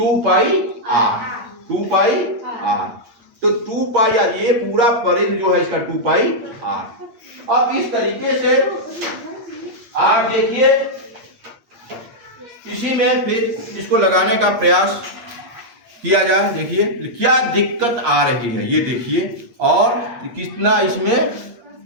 तो 2πr ये पूरा परिधि जो है इसका 2πr। अब इस तरीके से आप देखिए, इसी में फिर इसको लगाने का प्रयास किया जाए। देखिए क्या दिक्कत आ रही है ये देखिए, और कितना इसमें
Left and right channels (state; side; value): late; left; 8.5 ms